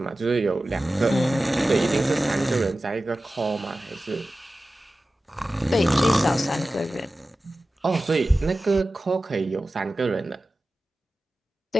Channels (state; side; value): normal; both; correlation 0.95